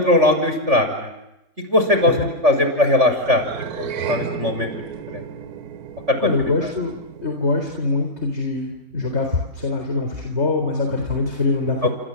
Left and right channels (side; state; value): left; late; 3.4 ms